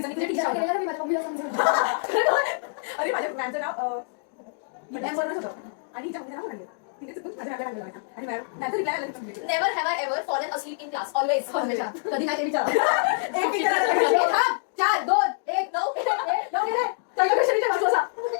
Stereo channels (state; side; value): silent; right; digital silence